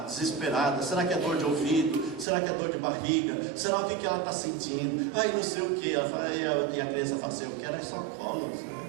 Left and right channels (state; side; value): drops out; left; at 2.2 s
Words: desesperada. Será que é dor de ouvido? Será que é dor de barriga? Será o que ela está sentindo? Aí não sei o que. E a criança fala assim, eu quero é só colo.